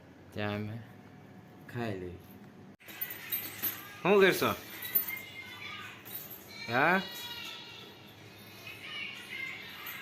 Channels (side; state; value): both; identical; correlation 1.00